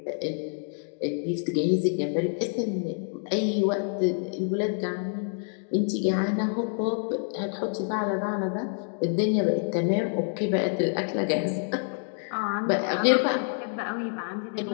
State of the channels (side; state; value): right; silent; 60 dB below the other